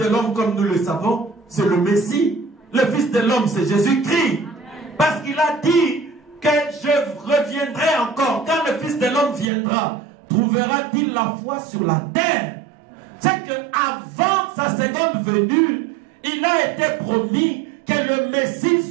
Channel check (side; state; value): left; drops out; at 9.5 s